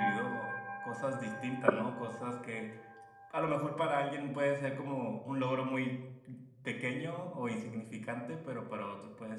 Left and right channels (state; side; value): identical; both; correlation 1.00